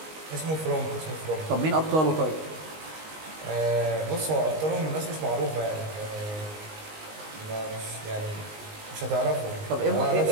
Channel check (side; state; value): left; late; 19 ms